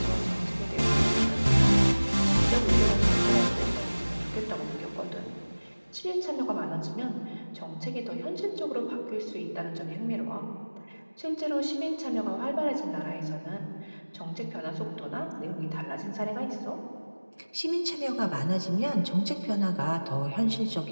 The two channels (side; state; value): both; inverted; correlation -1.00